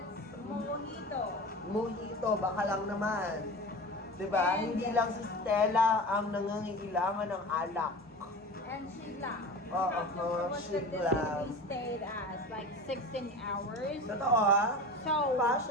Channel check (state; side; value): normal; both; correlation 0.33